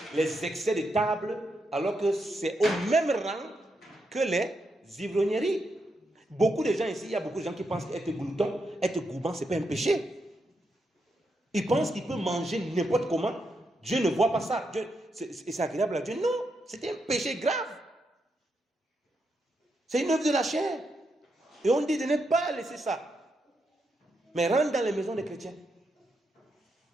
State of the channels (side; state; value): both; normal; correlation 0.82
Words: les excès de table alors que c'est au même rang que les ivrogneries. Beaucoup de gens ici, il y a beaucoup de gens qui pensent qu'être glouton, être gourmand, ce n'est pas un péché. Ils pensent qu'ils peuvent manger n'importe comment. Dieu ne voit pas ça. C'est agréable à Dieu. Non, c'est un péché grave. C'est une œuvre de la chair. Et on dit de ne pas laisser ça. Mais rentre dans les maisons des chrétiens.